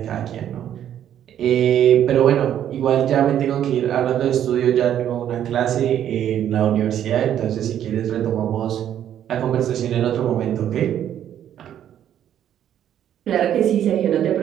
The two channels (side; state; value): left; quieter; 10.4 dB